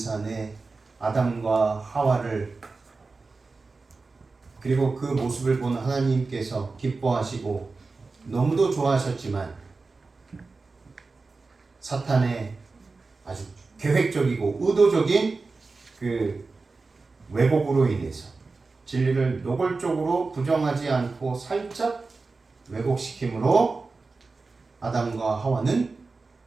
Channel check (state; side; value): quieter; left; 3.9 dB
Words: 아담과 하와를 그리고 그 모습을 본 하나님께서 기뻐하시고 너무도 좋아하셨지만 사탄의 아주 계획적이고 의도적인 그 왜곡으로 인해서 진리를 노골적으로 부정하지 않고 살짝 왜곡시킴으로 아담과 하와는